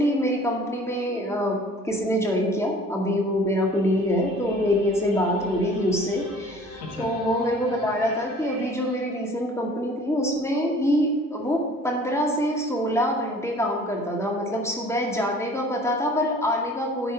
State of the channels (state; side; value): normal; both; correlation 0.49